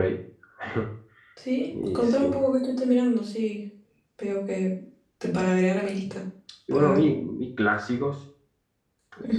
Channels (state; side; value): identical; both; correlation 1.00